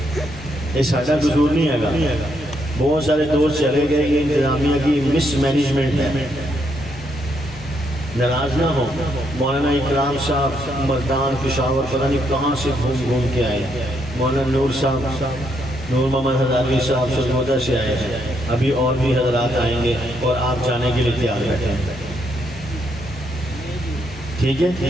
یہ ساڈا قصور نہیں ہے گا، بہت سارے دوست چلے گئے، یہ انتظامیہ کی مس مینجمنٹ ہے۔ ناراض نہ ہو، مولانا اکرام صاحب مردان پشاور پتہ نہیں کہاں سے گھوم کے آئے، مولانا نور صاحب، نور محمد ہزاروی صاحب سرگودا سے آئے ہیں، ابھی اور بھی حضرات آئیں گے اور آپ جانے کے لیے تیار بیٹھے ہیں۔ ٹھیک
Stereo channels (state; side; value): noise; left; hum, 19 dB below the sound